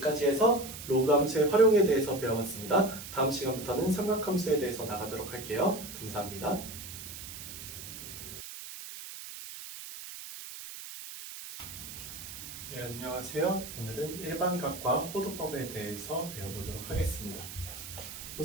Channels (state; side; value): noise; right; hiss, 11 dB below the sound